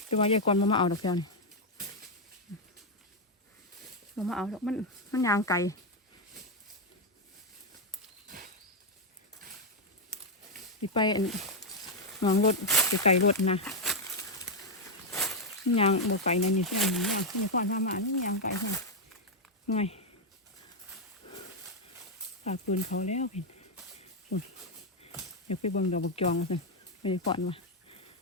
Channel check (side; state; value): both; normal; correlation 0.02